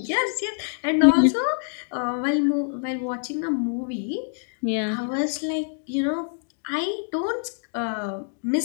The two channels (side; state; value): right; silent; digital silence